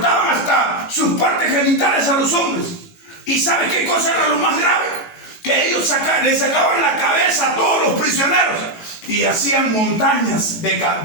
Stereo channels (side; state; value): right; late; 17 ms